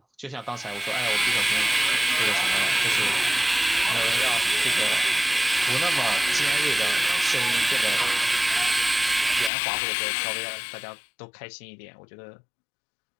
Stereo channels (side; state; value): right; drops out; at 9.5 s